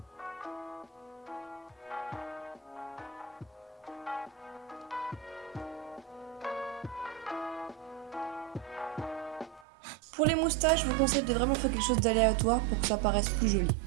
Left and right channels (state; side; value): drops out; left; at 9.7 s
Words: Pour les moustaches, je vous conseille de vraiment faire quelque chose d'aléatoire pour que ça paraisse plus joli.